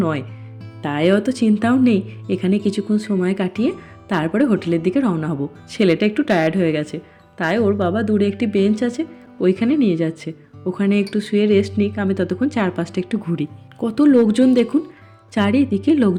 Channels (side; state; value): both; identical; correlation 1.00